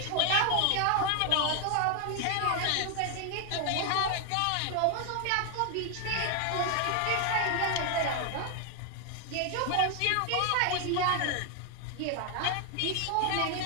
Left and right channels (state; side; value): different; both; correlation 0.01